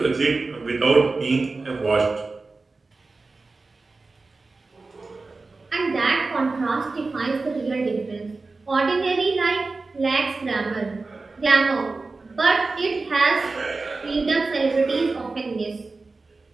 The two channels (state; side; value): quieter; left; 3.7 dB